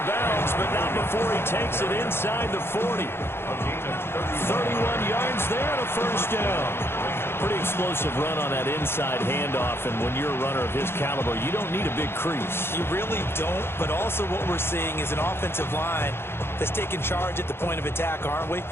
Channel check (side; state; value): right; late; 0.11 ms